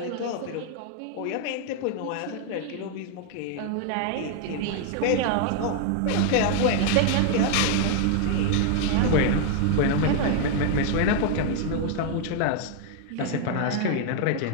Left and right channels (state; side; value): different; both; correlation 0.00